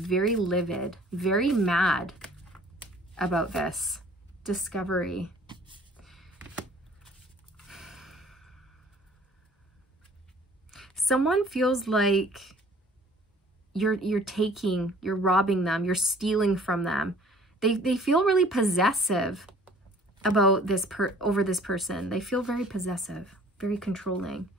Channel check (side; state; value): both; normal; correlation 0.53